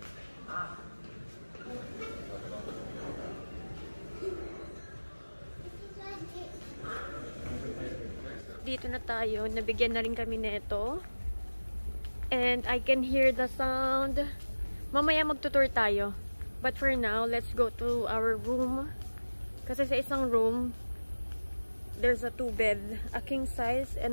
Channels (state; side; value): inverted; both; correlation -1.00